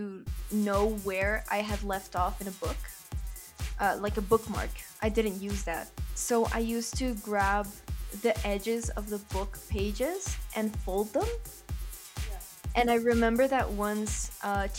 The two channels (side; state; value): both; identical; correlation 1.00